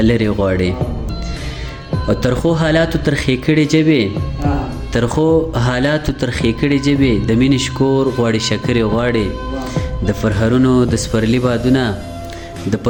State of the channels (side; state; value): both; identical; correlation 1.00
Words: غواړي او ترخو حالاتو ترخې کړې جبې ترخو حالاتو ترخې کړې جبې د مینې شکور غواړي شکرې غواړي د پرهرونو د سپرلي بادونه د